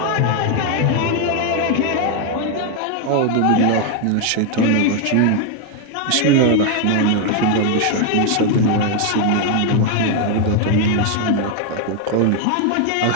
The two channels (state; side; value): different; both; correlation 0.01